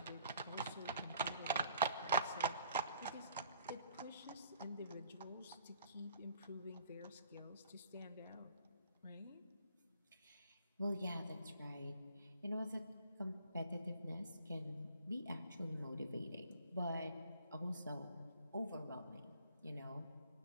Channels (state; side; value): inverted; both; correlation -0.55